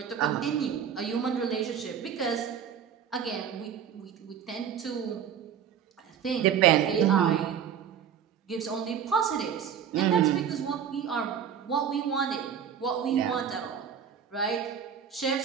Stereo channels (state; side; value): quieter; left; 8.3 dB